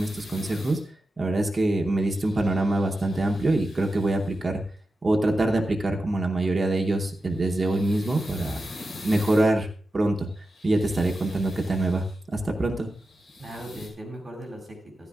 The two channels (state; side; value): normal; both; correlation 0.91